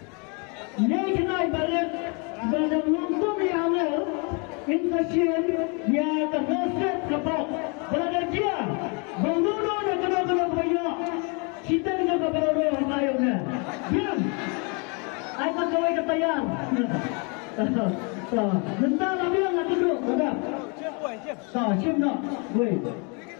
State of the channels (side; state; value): right; quieter; 33.9 dB